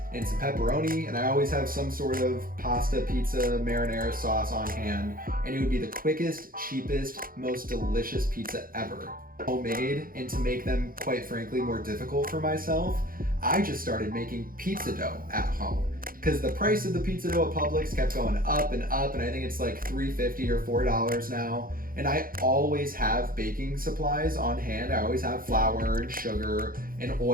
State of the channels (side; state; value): left; late; 0.41 ms